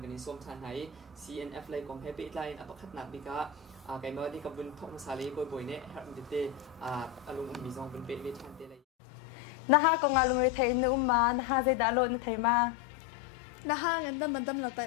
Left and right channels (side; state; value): right; drops out; at 8.8 s